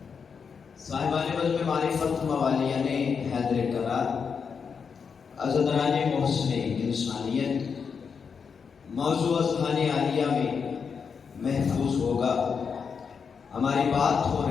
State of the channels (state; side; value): quieter; right; 6.1 dB